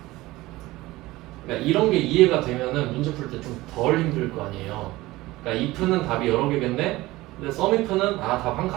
그러니까 이런 게 이해가 되면은 문제 풀 때 좀 덜 힘들 거 아니에요. 그러니까 if는 답이 여러 개겠네? 근데 sum if는 답 한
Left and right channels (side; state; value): left; quieter; 18.8 dB